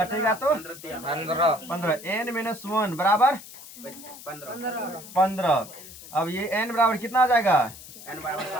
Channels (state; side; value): noise; left; hiss, 16 dB below the sound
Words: तो 15। n माइनस 1 बराबर 15। अब ये n बराबर कितना आ जाएगा?